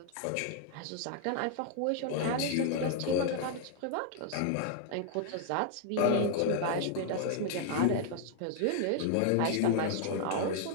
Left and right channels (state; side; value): different; both; correlation 0.00